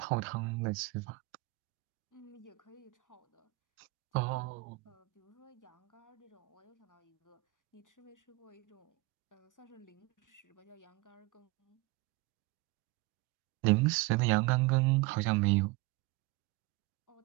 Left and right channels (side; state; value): left; quieter; 22.8 dB